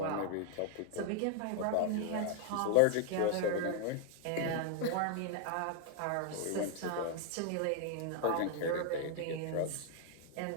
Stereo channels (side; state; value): both; different; correlation 0.00